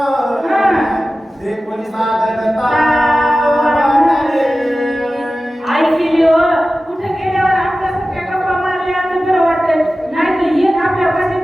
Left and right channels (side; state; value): both; normal; correlation 0.95